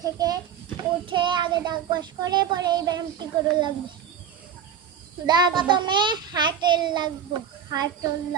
থেকে উঠে আগে দাঁত ব্রাশ করে পরে এই ব্যায়ামটি করে লাগবে। প্রথমে হাঁটল লাগবো,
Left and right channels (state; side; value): quieter; left; 8.1 dB